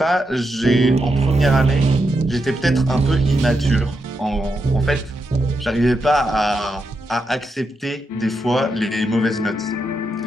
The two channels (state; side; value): normal; both; correlation 0.85